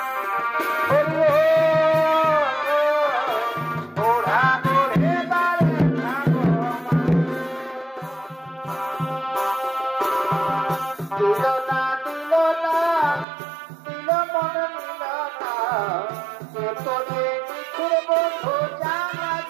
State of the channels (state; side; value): drops out; left; at 13.2 s